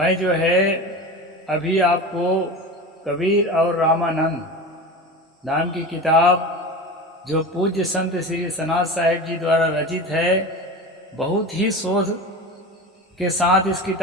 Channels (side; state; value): both; normal; correlation 0.29